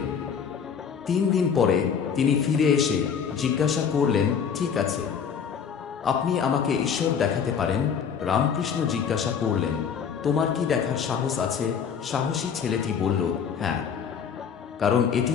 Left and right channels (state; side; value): quieter; right; 7.0 dB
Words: 3 দিন পরে তিনি ফিরে এসে জিজ্ঞাসা করলেন, ঠিক আছে, আপনি আমাকে ঈশ্বর দেখাতে পারেন? রামকৃষ্ণ জিজ্ঞাসা করলেন, তোমার কি দেখার সাহস আছে? সাহসী ছেলেটি বলল, হ্যাঁ, কারণ এটি